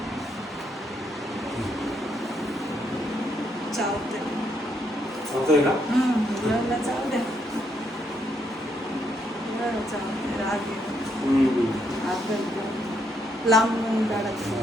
चावतंय. चावतोय का? मुलांना चावू द्या. मुलांना चावतंय, राग येतो. लांबून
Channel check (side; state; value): both; normal; correlation 0.76